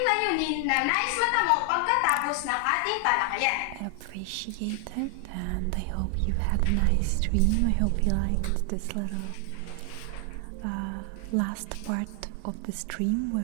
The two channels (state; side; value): different; both; correlation 0.00